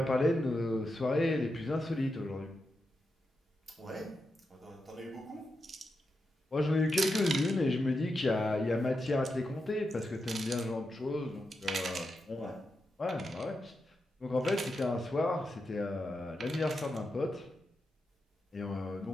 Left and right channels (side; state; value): both; normal; correlation 0.87